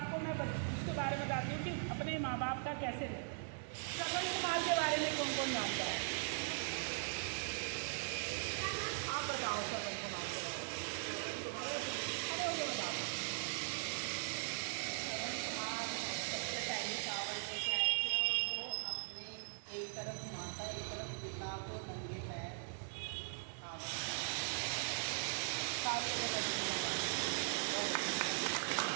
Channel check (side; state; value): left; silent; digital silence